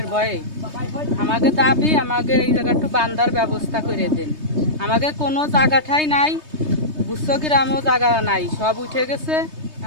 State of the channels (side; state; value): left; late; 3.2 ms